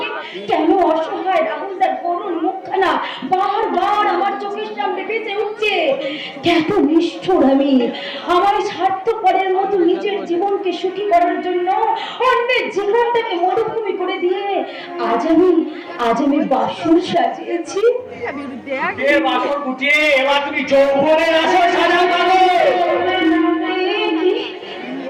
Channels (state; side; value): identical; both; correlation 1.00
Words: কেন অসহায় রাহুলদার করুণ মুখখানা বারবার আমার চোখের সামনে ভেসে উঠছে। কত নিষ্ঠুর আমি! আমার স্বার্থপরের মতো নিজের জীবনকে সুখী করার জন্য অন্যের জীবনটাকে মরুভূমি করে দিয়ে আজ আমি বাসর সাজিয়েছি। এ বাসর গুটিয়ে এবার তুমি যৌবনের আসর সাজাও।